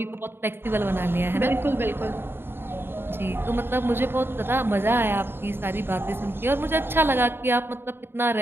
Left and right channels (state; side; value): late; left; 0.11 ms